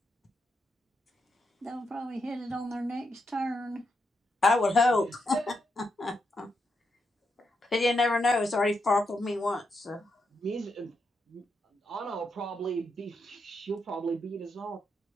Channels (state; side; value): normal; both; correlation 0.82